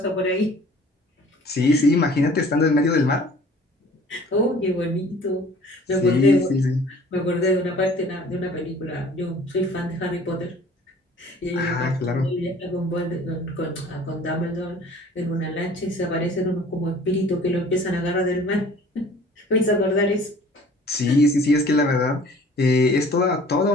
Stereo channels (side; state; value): both; normal; correlation 0.50